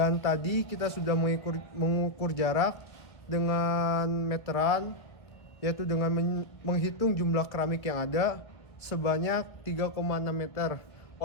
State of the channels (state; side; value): late; right; 1.8 ms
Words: tadi kita sudah mengukur jarak dengan meteran, yaitu dengan menghitung jumlah keramik yang ada sebanyak 3,6 meter.